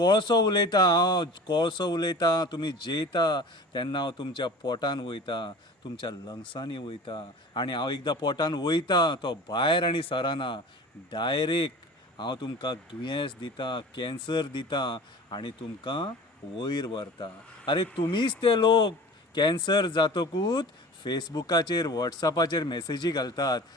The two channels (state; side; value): normal; both; correlation 0.39